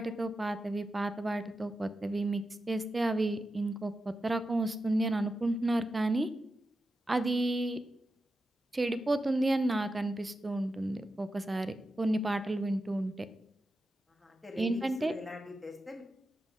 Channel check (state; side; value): normal; both; correlation 0.90